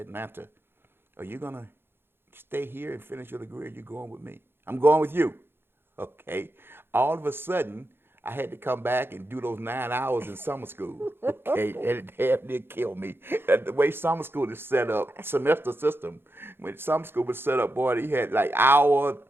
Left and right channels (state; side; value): late; left; 0.11 ms